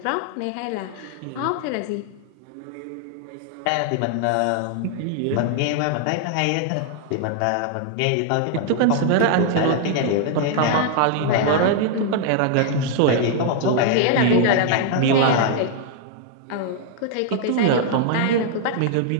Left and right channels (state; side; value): different; both; correlation 0.00